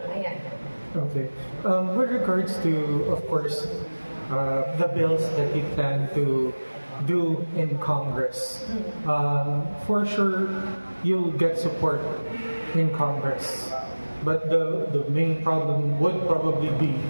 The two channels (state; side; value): inverted; both; correlation -1.00